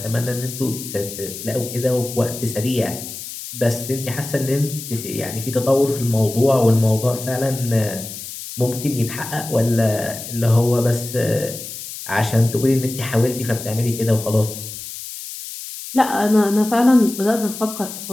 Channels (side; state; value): left; noise; hiss, 10 dB below the sound